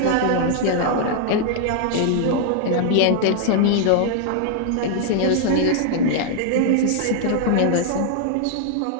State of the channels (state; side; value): different; both; correlation 0.00